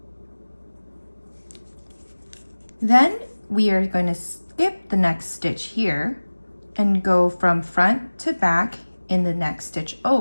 Then we are going to skip the next stitch here and go from front to back in the next stitch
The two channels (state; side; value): inverted; both; correlation -1.00